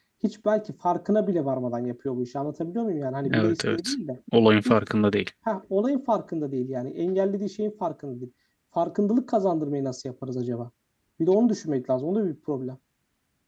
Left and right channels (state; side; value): identical; both; correlation 1.00